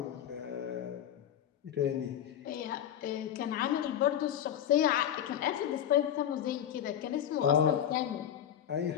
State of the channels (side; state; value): right; quieter; 10.2 dB